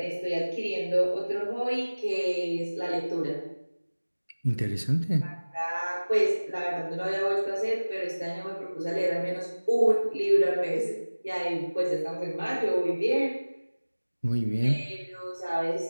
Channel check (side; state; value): both; inverted; correlation -1.00